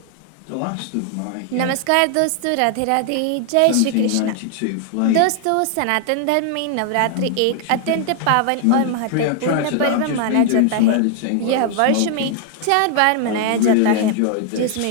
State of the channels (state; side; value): different; both; correlation 0.00